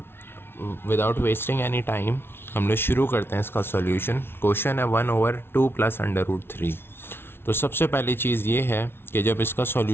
विदाउट वेस्टिंग एनी टाइम हम लोग शुरू करते हैं इसका सॉल्यूशन। क्वेश्चन है 1/2 प्लस अंडर रूट 3। तो सबसे पहली चीज़ ये है कि जब इसका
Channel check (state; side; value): late; right; 0.11 ms